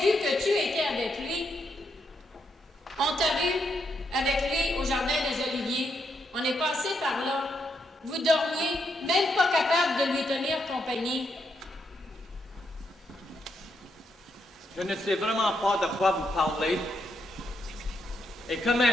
que tu étais avec lui. On t'a vu avec lui au Jardin des Oliviers. On est passé par là. Vous dormiez, même pas capable de lui tenir compagnie. Je ne sais vraiment pas de quoi vous parlez. Et que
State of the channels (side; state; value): both; normal; correlation 0.79